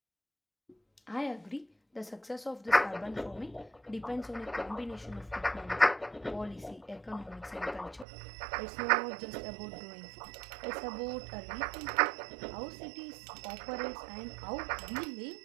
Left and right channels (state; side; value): drops out; left; at 8.1 s